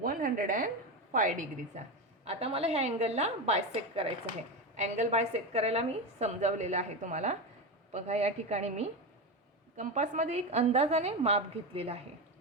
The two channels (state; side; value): normal; both; correlation 0.17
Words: 105 डिग्रीचा. आता मला ह्या अँगलला बायसेक्ट करायचं आहे. अँगल बायसेक्ट करायला मी समजावलेलं आहे तुम्हाला. बघा या ठिकाणी मी कंपासमध्ये एक अंदाजाने माप घेतलेलं आहे.